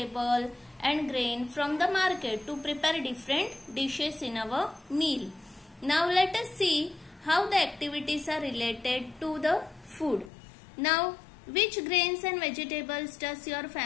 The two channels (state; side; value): drops out; right; at 10.3 s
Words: and grain from the market to prepare different dishes in our meal. Now let us see how the activities are related to the food. Now which grains and vegetables does your